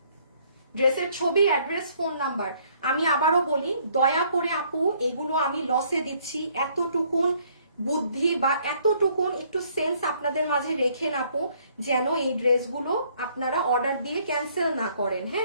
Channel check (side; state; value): both; inverted; correlation -0.64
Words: ড্রেসের ছবি, অ্যাড্রেস, ফোন নাম্বার। আমি আবারও বলি, দয়া করে আপু এগুলো আমি লসে দিচ্ছি, এতটুকুন বুদ্ধি বা এতটুকুন একটু সেন্স আপনাদের মাঝে রেখেন আপু, যেন এই ড্রেসগুলো আপনারা অর্ডার দিয়ে ক্যান্সেল না করেন।